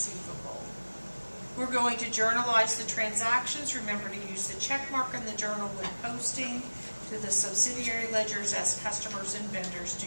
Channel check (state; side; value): inverted; both; correlation -1.00